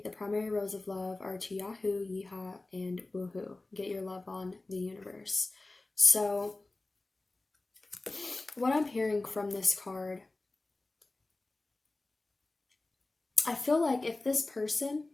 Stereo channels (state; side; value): quieter; right; 3.1 dB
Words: The primary roles of love are to Yahoo, Yeehaw, and Woohoo. Get your love on the universe. So, what I'm hearing from this card, I feel like if this person